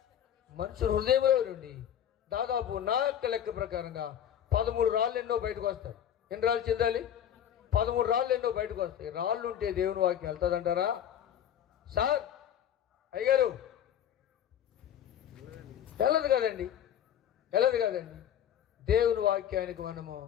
మనిషి హృదయంలో నుండి దాదాపు నా లెక్క ప్రకారంగా 13 రాళ్ళు ఎన్నో బయటకు వస్తాయి. ఎన్ని రాళ్ళు చెందాలి? 13 రాళ్ళు ఎన్నో బయటకు వస్తాయి. రాళ్ళు ఉంటే దేవుని వాక్యం వెళ్తుందంటారా? సార్ అయ్యగారు, వెళ్ళదు కదండి, వెళ్ళదు కదండి. దేవుని వాక్యానికి మనము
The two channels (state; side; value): quieter; right; 10.0 dB